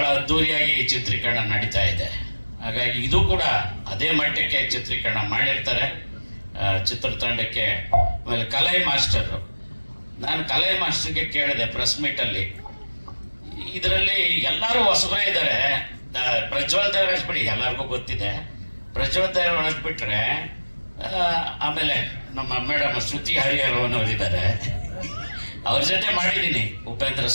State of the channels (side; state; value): both; inverted; correlation -1.00